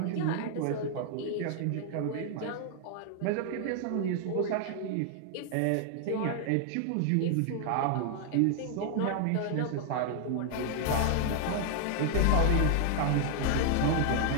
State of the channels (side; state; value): both; different; correlation 0.00